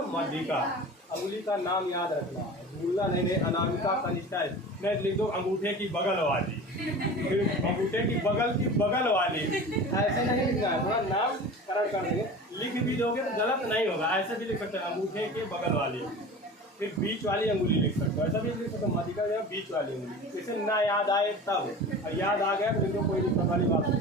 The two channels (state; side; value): normal; both; correlation 0.36